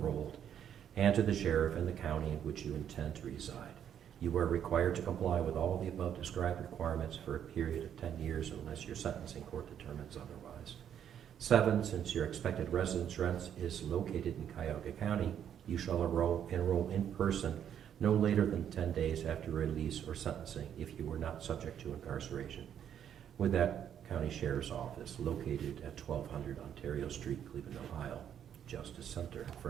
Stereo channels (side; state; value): left; quieter; 9.3 dB